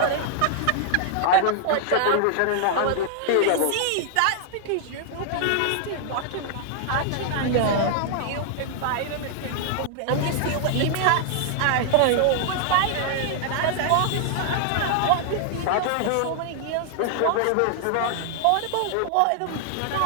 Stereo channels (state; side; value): different; both; correlation -0.01